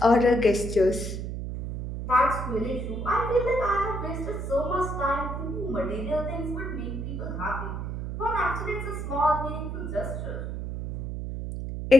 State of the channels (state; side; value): noise; right; hum, 5 dB below the sound